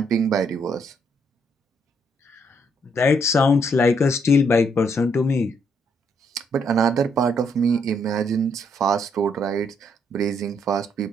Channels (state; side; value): normal; both; correlation 0.72